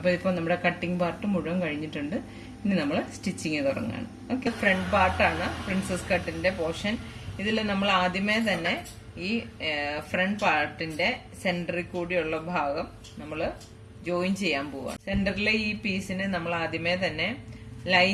ഇപ്പൊ നമ്മുടെ കട്ടിംഗ് പാർട്ട് മുഴുവൻ കഴിഞ്ഞിട്ടുണ്ട്. ഇനി നമ്മൾ സ്റ്റിച്ചിങ് തുടങ്ങാണ്. ഓക്കെ, ഫ്രണ്ട് പാർട്ടാണ് പ്രിൻസസ് കട്ടിന്റെ പോർഷൻ. ഇതിൽ നമ്മൾ ആദ്യമേ തന്നെ ഈ ഫ്രണ്ട് പാർട്ടിന്റെ സെന്ററിൽ കൂടിയുള്ള ഭാഗം നമ്മൾ ജോയിൻ ചെയ്യാൻ പോവാണ്. സെന്ററിലെ ഈ പീസിന് നമ്മൾ ആദ്യമേ തന്നെ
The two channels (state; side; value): identical; both; correlation 1.00